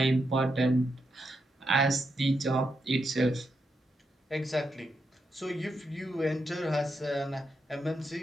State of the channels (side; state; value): both; normal; correlation 0.83